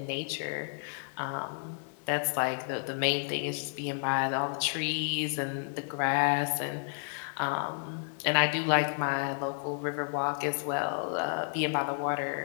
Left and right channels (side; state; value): right; silent; digital silence